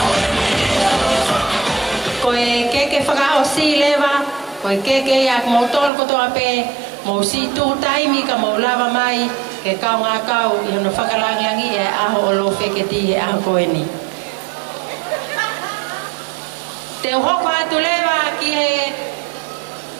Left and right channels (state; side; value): drops out; left; at 5.9 s